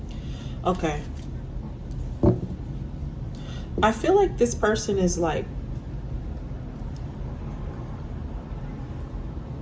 Okay. I feel like this person is like,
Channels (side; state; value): both; identical; correlation 1.00